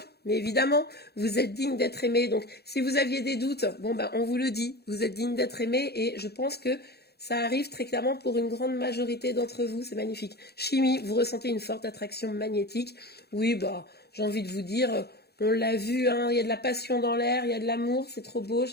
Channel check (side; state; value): right; late; 0.47 ms